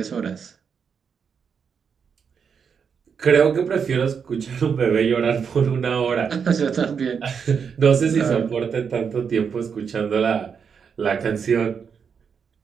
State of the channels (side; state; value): left; quieter; 6.6 dB